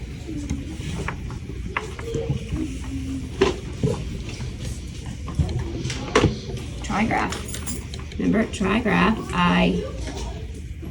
Trigraph. Remember, trigraph. I-G-H.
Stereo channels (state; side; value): identical; both; correlation 1.00